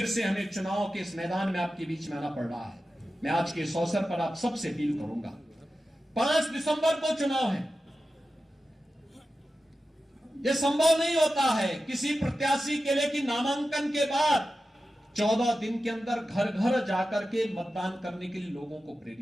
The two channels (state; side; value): normal; both; correlation 0.93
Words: से हमें चुनाव के इस मैदान में आपके बीच में आना पड़ रहा है। मैं आज के इस अवसर पर आप सबसे अपील करूंगा, 5 दिसंबर को चुनाव है। यह संभव नहीं होता है किसी प्रत्याशी के लिए कि नामांकन के बाद 14 दिन के अंदर घर घर जाकर के मतदान करने के लिए लोगों को